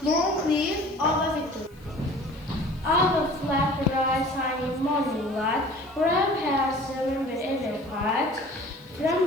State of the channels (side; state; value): left; noise; hiss, 30 dB below the sound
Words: long live our victory. Our flag rises in morning light, brave hearts remember every fight.